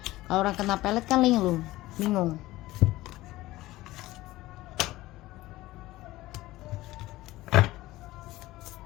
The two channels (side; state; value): right; quieter; 17.6 dB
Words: Kalau orang kena pelet kan linglung, bingung.